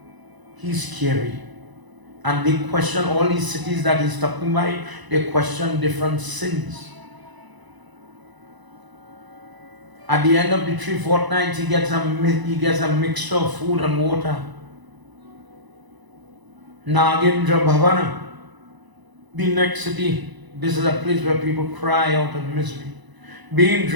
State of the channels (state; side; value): late; left; 1.0 ms